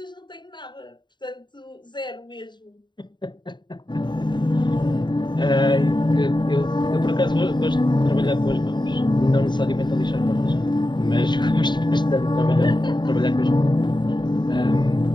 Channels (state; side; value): late; right; 0.22 ms